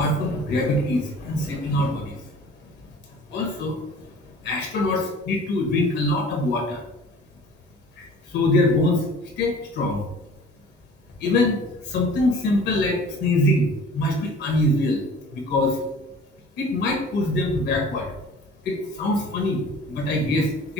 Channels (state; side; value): normal; both; correlation 0.46